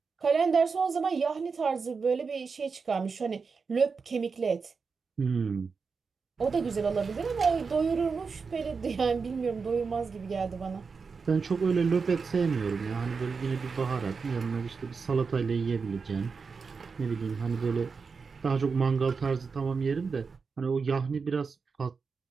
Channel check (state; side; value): quieter; left; 5.1 dB